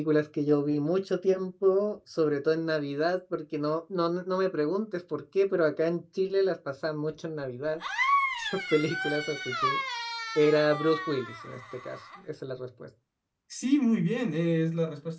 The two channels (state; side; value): identical; both; correlation 1.00